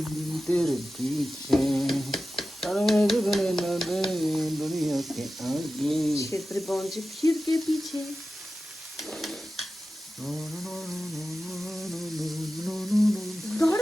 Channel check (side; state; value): both; normal; correlation 0.94